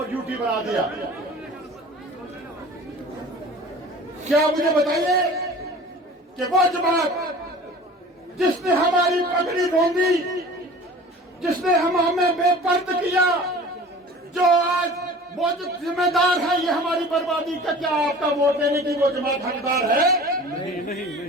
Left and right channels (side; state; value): both; normal; correlation 0.42